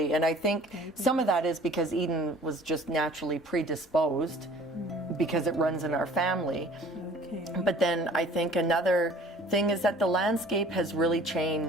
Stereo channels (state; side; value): normal; both; correlation 0.50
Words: and I think some of that is because Eden was just naturally predisposed because it runs in our family. But then I think another thing is that the landscape has really